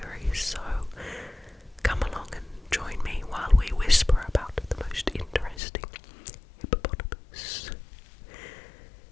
so come along and join me while we whisper about the most interesting hippopotamus.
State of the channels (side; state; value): right; drops out; at 5.6 s